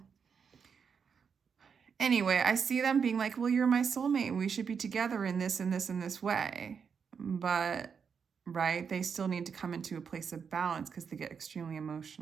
anyway, I see them being like, well, you're my soulmate. We should be together in this and this and this way. But, right, they still need to come into a place of balance because they get extremely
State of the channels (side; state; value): left; quieter; 6.4 dB